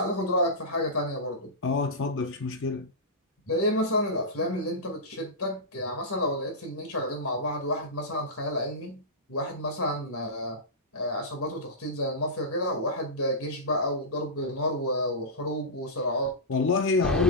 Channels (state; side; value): normal; both; correlation -0.15